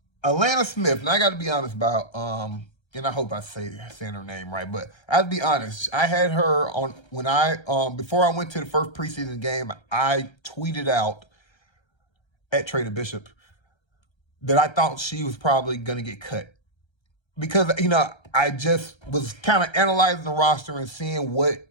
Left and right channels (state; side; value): late; right; 1.3 ms